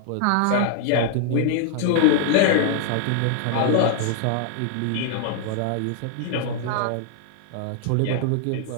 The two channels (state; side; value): different; both; correlation -0.01